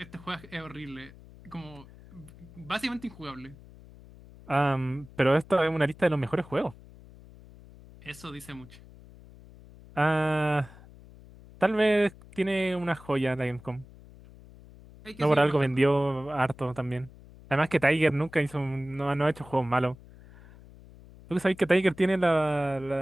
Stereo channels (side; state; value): left; noise; hum, 21 dB below the sound